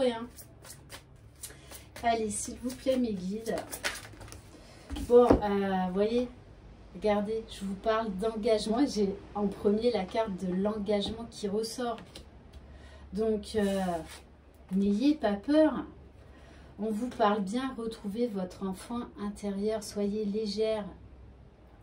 Allez, s'il vous plaît, mes guides. Bon, vous voyez, regardez, je vous parle d'engagement. J'ai en premier la carte de l'engagement qui ressort. Donc, n'ayez pas peur. On vous parle bien, retrouvez votre enfant intérieur. Soyez légère.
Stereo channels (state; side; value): identical; both; correlation 1.00